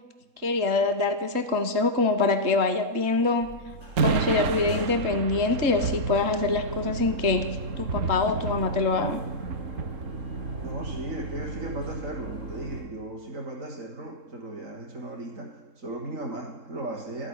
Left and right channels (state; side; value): late; left; 3.7 ms